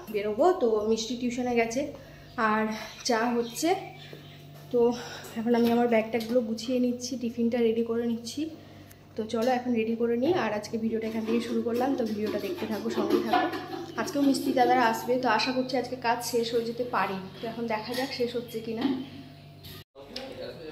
বেরোবো। তো মিষ্টি টিউশনে গেছে আর চা হচ্ছে। তো এখন আমি আমার ব্যাগট্যাগুলো গুছিয়ে নিচ্ছি, টিফিনটা রেডি করে নিচ্ছি। তো চলো এখন রেডি করে নিই। আর আজকে ভিডিওটা এখান থেকে শুরু করলাম, তো ভিডিওটা দেখতে থাকো, সঙ্গেই থাকো। আজকেও মিস্ত্রি দাদারা আসবে, তো আশা করছি আজকে কাজ শেষ হয়ে যেতে পারি। তো এখন দেখা যাক শেষ হচ্ছে কিনা।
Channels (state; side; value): identical; both; correlation 1.00